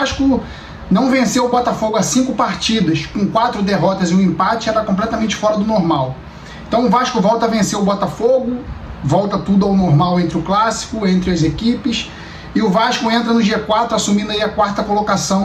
não venceu o Botafogo há 5 partidas, com 4 derrotas e um empate, era completamente fora do normal. Então o Vasco volta a vencer o Botafogo, volta tudo ao normal entre o clássico, entre as equipes, e o Vasco entra no G4 assumindo aí a 4ª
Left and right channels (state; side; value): identical; both; correlation 1.00